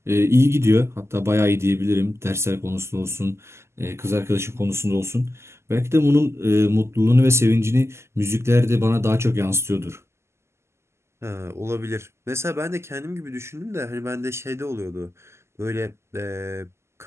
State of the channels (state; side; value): late; left; 0.13 ms